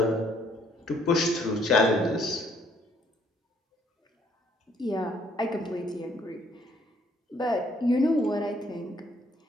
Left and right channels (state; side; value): normal; both; correlation 0.66